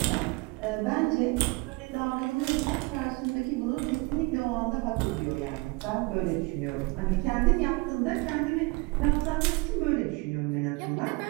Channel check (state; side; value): quieter; left; 26.2 dB